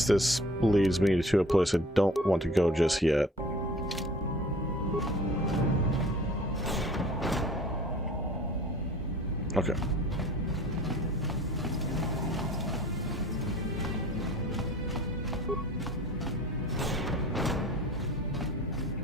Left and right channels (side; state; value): both; normal; correlation 0.46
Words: this leads me to a place I don't want to go just yet. Okay.